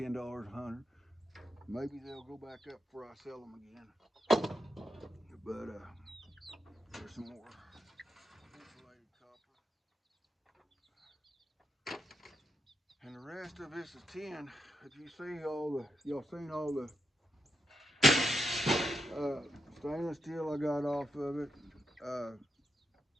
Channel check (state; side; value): normal; both; correlation 0.83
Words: a hundred. Maybe they'll go back up before I sell them again. But there's some more insulated copper. And the rest of this is tin. If you see y'all seen all the stainless steel I got off of it.